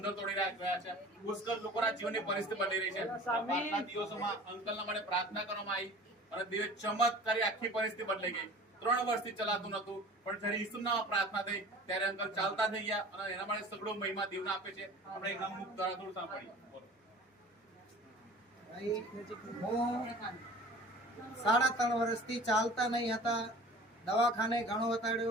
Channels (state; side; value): normal; both; correlation 0.43